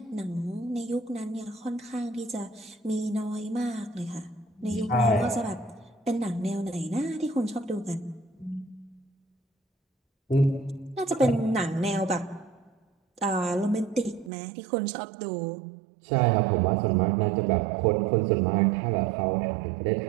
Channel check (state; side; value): drops out; left; at 14.3 s